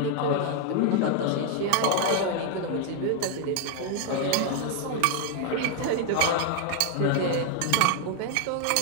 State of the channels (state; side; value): different; both; correlation 0.00